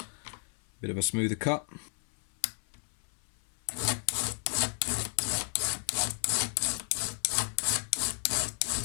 bit of a smoother cut.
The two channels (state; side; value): silent; right; 56 dB below the other